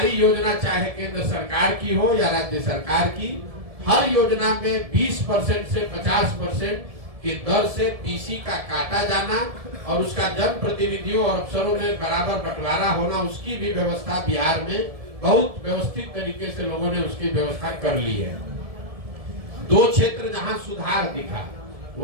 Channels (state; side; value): late; left; 1.7 ms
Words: योजना चाहे केंद्र सरकार की हो या राज्य सरकार की, हर योजना में 20% से 50% की दर से पीसी का काटा जाना और उसका जन प्रतिनिधियों और अफसरों में बराबर बंटवारा होना, उसकी भी व्यवस्था बिहार में बहुत व्यवस्थित तरीके से लोगों ने उसकी व्यवस्था कर ली है। दो क्षेत्र जहां सुधार दिखा